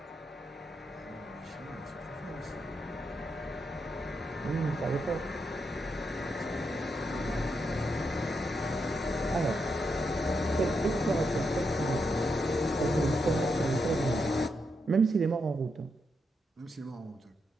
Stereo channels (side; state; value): both; normal; correlation 0.82